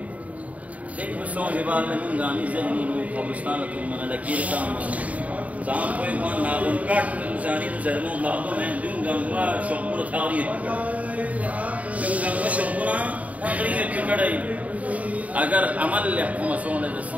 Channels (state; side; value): late; left; 0.069 ms